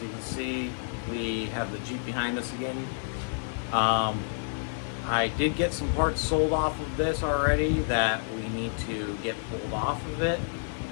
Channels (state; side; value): silent; right; digital silence